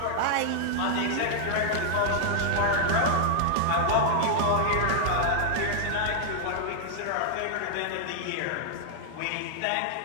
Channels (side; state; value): both; different; correlation -0.01